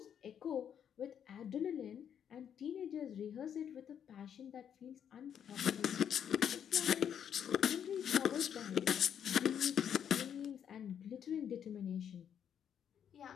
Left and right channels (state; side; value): quieter; right; 8.7 dB